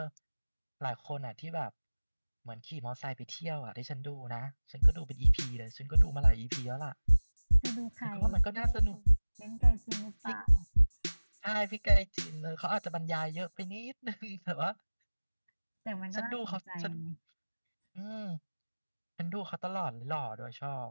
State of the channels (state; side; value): inverted; both; correlation -1.00